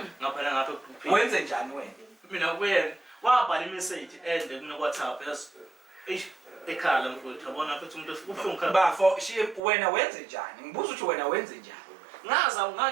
ngaphela ngapha egroupini Wenze njani wena? mina kuyena wabhala imeseji ende kuno-WhatsApp ekhala mfowethu yabona futhi umuntu ubuhlungu khala Bafo wena wenze njani? Ngibuza ukuthi wena wenze njani?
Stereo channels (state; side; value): drops out; left; at 9.6 s